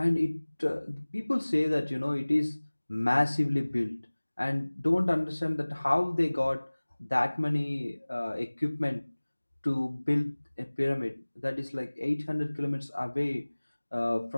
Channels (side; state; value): both; inverted; correlation -1.00